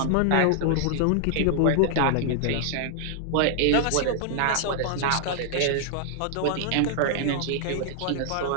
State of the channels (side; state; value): both; different; correlation -0.01